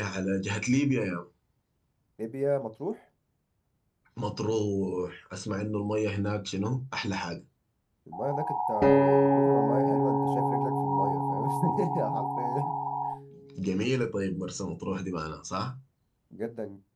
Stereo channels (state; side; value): identical; both; correlation 1.00